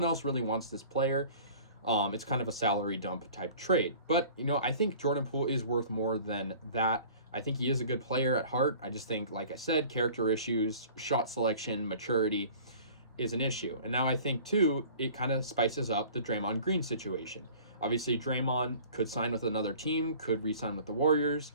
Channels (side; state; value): both; inverted; correlation -0.47